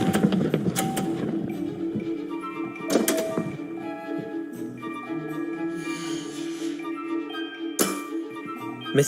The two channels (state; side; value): identical; both; correlation 1.00